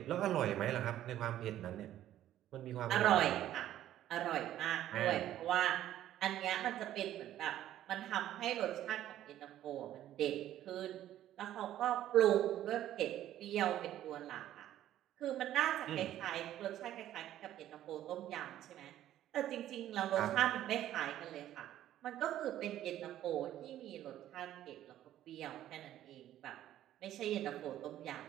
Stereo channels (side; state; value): left; quieter; 12.5 dB